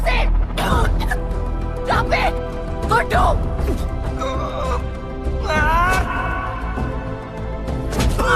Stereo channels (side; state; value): both; identical; correlation 1.00